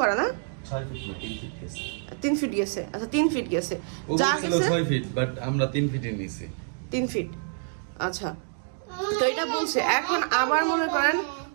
করা না 3 ফিট গেছে। আচ্ছা 3 ফিট গেছে, যা গেছে 6 ফিট, বাট আমরা 3 ফিটে নিছি। 3 ফিট। আচ্ছা, তো এটা বলছে। এখন আবার মনে করেন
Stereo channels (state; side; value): silent; left; digital silence